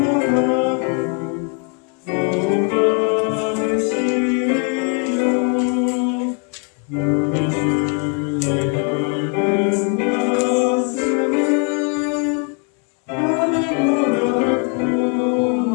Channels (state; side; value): quieter; right; 36.8 dB